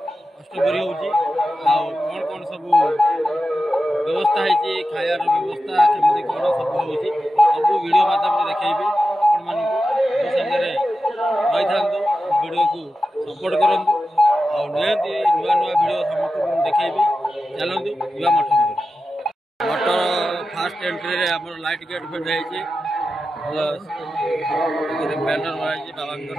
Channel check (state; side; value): normal; both; correlation 0.92